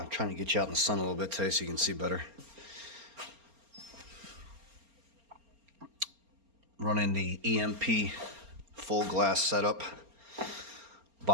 trying to get you out in the sun a little bit today so you can see better. Running the EMP full glass setup.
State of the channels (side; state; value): left; late; 4.3 ms